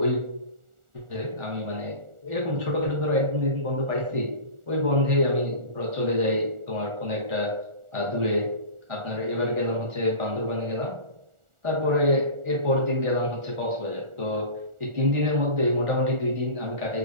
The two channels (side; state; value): left; late; 1.4 ms